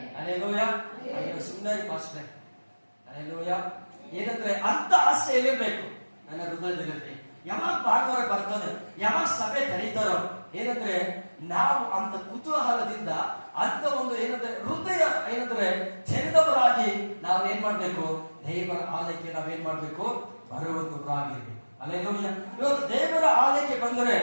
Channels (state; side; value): inverted; both; correlation -1.00